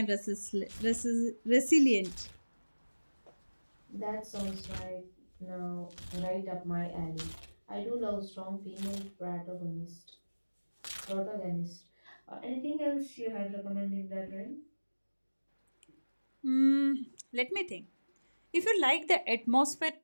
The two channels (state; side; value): inverted; both; correlation -1.00